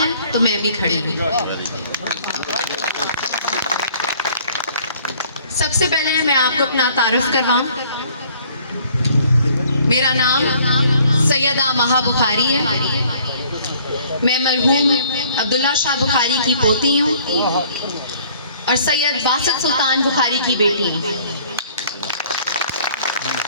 तो मैं भी खड़ी हूँ। सबसे पहले मैं आपको अपना तारुफ करवाऊं। मेरा नाम सैयदा महा बुखारी है। मैं मरहूम अब्दुल्ला शाह बुखारी की पोती हूँ और सैयद बासित सुल्तान बुखारी की बेटी हूँ।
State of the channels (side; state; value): both; inverted; correlation -0.57